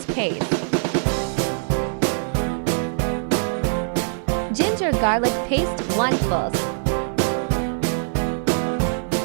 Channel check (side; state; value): left; silent; 59 dB below the other